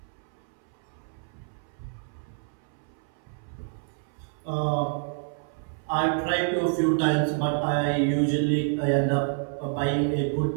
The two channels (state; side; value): silent; left; 59 dB below the other